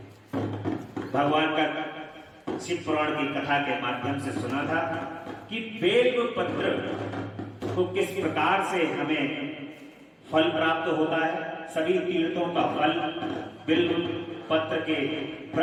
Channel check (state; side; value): identical; both; correlation 1.00